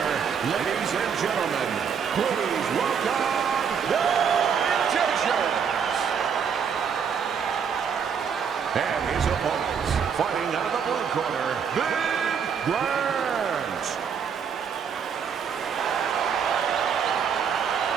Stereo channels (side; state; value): left; quieter; 7.0 dB